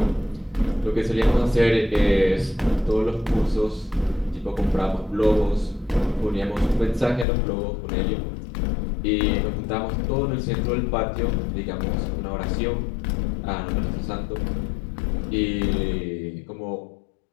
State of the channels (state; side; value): drops out; right; at 7.2 s